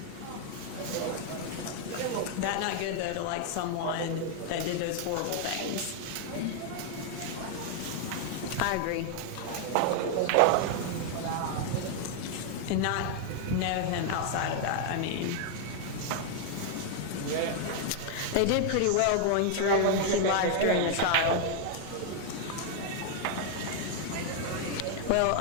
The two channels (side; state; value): both; different; correlation 0.00